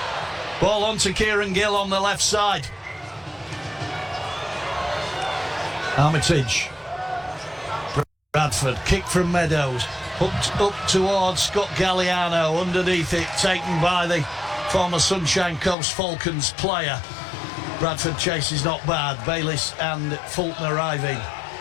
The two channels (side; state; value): right; drops out; at 15.8 s